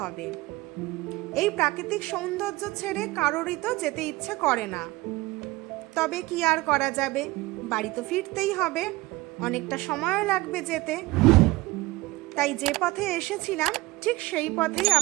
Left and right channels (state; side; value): quieter; left; 20.4 dB